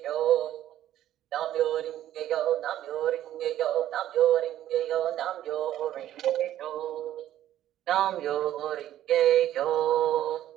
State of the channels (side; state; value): left; quieter; 12.4 dB